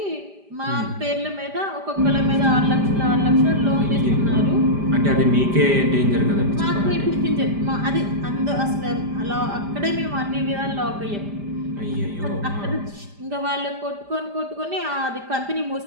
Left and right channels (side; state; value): left; late; 5.0 ms